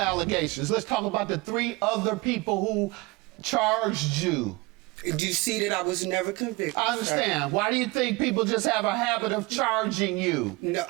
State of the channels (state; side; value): quieter; left; 23.2 dB